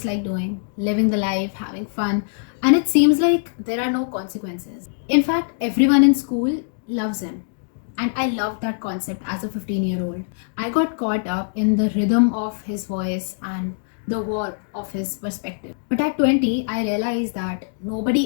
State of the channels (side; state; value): right; silent; digital silence